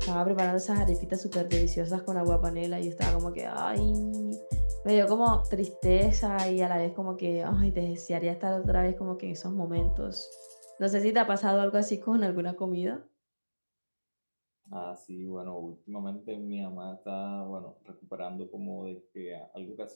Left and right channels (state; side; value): inverted; both; correlation -1.00